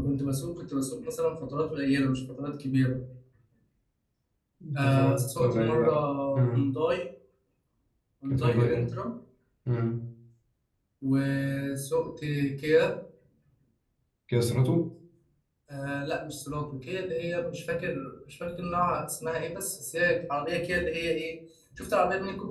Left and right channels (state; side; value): identical; both; correlation 1.00